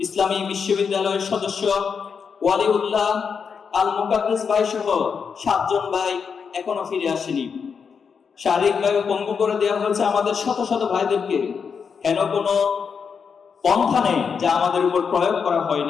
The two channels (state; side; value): quieter; right; 6.2 dB